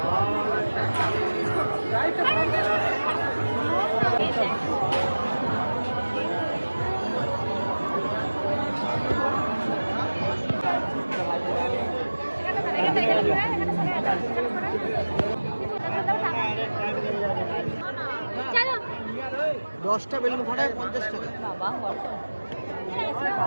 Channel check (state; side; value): inverted; both; correlation -1.00